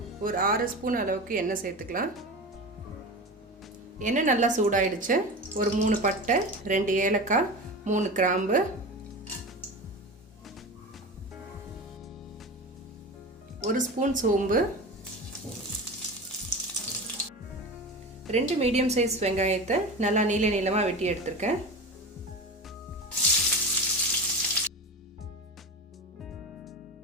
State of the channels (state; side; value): normal; both; correlation 0.28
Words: ஒரு 6 ஸ்பூன் அளவுக்கு எண்ணெய் சேர்த்துக்கலாம். எண்ணெய் நல்லா சூடாயிடுச்சு. ஒரு 3 பட்டை, 2 ஏலக்காய், 3 கிராம்பு, 1 ஸ்பூன் சோம்பு, 2 மீடியம் சைஸ் வெங்காயத்தை நல்லா நீளமாக வெட்டி எடுத்திருக்கேன்.